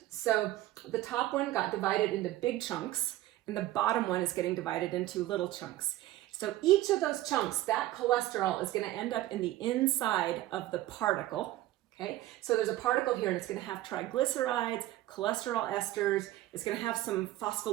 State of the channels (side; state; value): left; quieter; 15.6 dB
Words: So the top one got divided into big chunks, and the bottom one is getting divided into little chunks. So each of those chunks, that cholesterol is going to end up in the inside of the particle. Okay, so there's a particle here and it's going to have triglycerides, cholesterol esters. It's going to have some